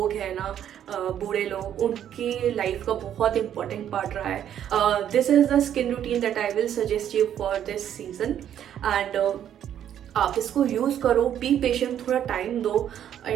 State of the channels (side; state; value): left; quieter; 10.1 dB